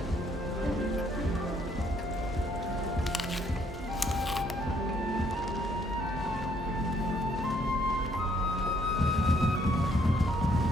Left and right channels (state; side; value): normal; both; correlation 0.68